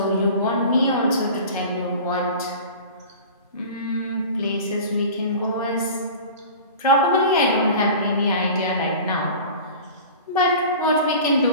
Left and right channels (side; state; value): both; inverted; correlation -0.38